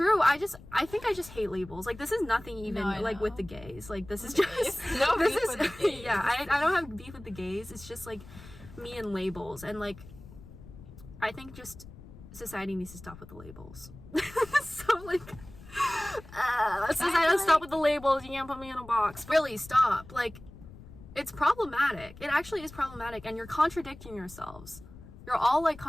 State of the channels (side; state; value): left; noise; rumble, 18 dB below the sound